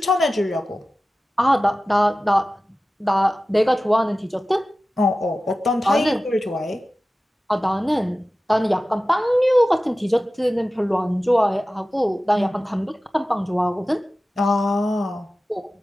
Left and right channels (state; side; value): normal; both; correlation 0.95